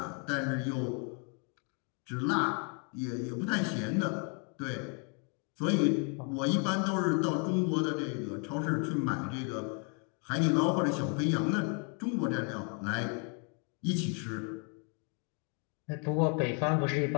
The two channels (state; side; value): quieter; right; 38.2 dB